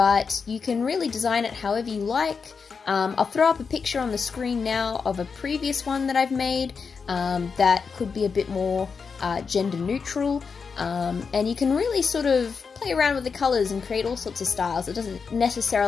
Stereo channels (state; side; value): quieter; right; 5.5 dB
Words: you can really design it however you like. I'll throw up a picture on the screen now of a previous one that I've made that could be a bit more gender neutral, and you can really sort of play around with the colours and create all sorts of styles. It doesn't